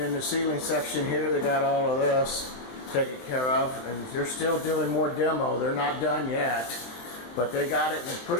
the ceiling section here, they got all of this taken care of, and they're still doing more demo. They're not done yet, but they got it in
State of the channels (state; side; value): late; right; 23 ms